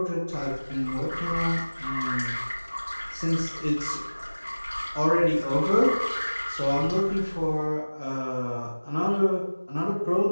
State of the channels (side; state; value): both; inverted; correlation -1.00